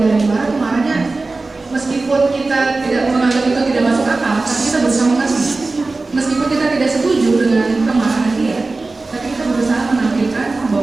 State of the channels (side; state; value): left; quieter; 3.5 dB